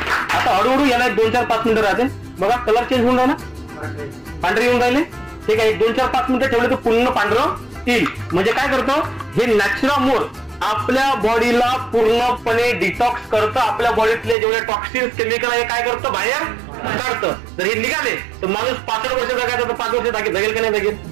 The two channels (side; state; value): left; drops out; at 14.4 s